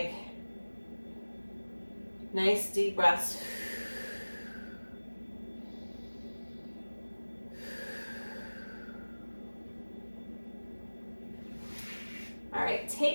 Nice deep breaths. All right,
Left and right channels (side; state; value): both; inverted; correlation -1.00